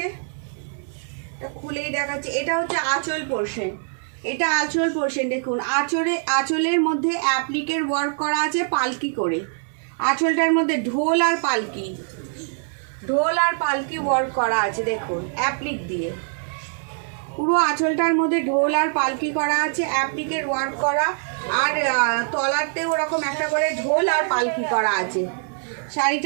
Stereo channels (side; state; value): left; silent; 60 dB below the other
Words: খুলেই দেখাচ্ছে, এটা হচ্ছে আঁচল পোর্শন, এটা আঁচল পোর্শন। দেখুন আঁচলের মধ্যে অ্যাপ্লিকের ওয়ার্ক করা আছে পালকি করে, আঁচলটার মধ্যে ঢোল আর পালকি, ঢোল আর পালকি ওয়ার্ক করা আছে। দেখুন অ্যাপ্লিক দিয়ে পুরো আঁচলটার মধ্যে ঢোল আর পালকি করা আছে, অ্যাপ্লিকের ওয়ার্ক করা, আর তলাতেও ওরকম একটা করে ঢোল আর পালকি করা আছে।